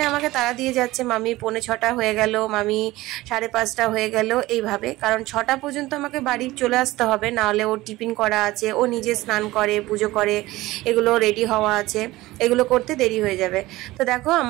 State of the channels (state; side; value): quieter; left; 18.4 dB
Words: আমাকে তাড়া দিয়ে যাচ্ছে, মামি 4:45 হয়ে গেল, মামি 5:30 হয়ে গেল, এইভাবে। কারণ 6টা পর্যন্ত আমাকে বাড়ি চলে আসতে হবে, নাহলে ওর টিফিন করা আছে, ও নিজে স্নান করে পুজো করে এগুলো রেডি হওয়া আছে, এগুলো করতে দেরি হয়ে যাবে। তো দেখো